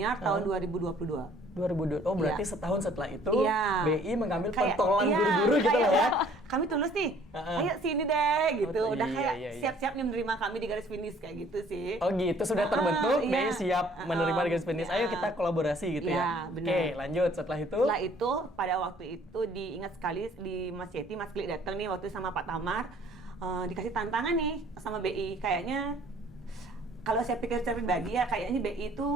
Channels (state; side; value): normal; both; correlation 0.57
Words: tahun 2022. 2002. Oh berarti setahun setelah itu BI mengambil kayak, pentolan guru-guru gitu kayak, lah ya. Kami tulus nih, ayo sini deh gitu. Udah kayak iya. siap-siap nih menerima kami di garis finish kayak gitu sih. Oh gitu, sudah terbentuk, BI siap menerima di garis finish. Ayo kita kolaborasi gitu ya. Benar. Oke, lanjut setelah itu. Setelah itu pada waktu itu diingat sekali di Mas Yeti, Mas Klik datang nih waktu sama Pak Tamar, dikasih tantangan nih sama BI. Kayaknya kalau saya pikir secara pribadi ya, kayaknya BI